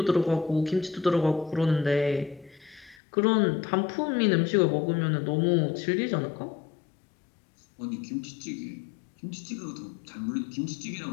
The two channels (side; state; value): right; drops out; at 3.0 s